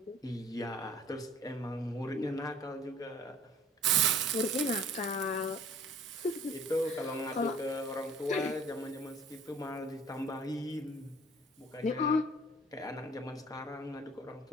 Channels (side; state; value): both; normal; correlation 0.51